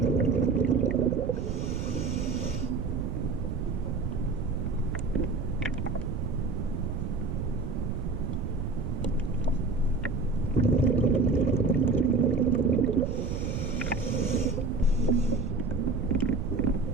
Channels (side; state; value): right; noise; rumble, 2 dB below the sound